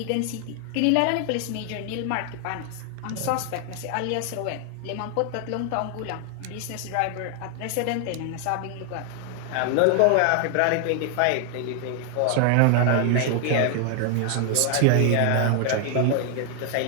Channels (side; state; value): both; different; correlation 0.00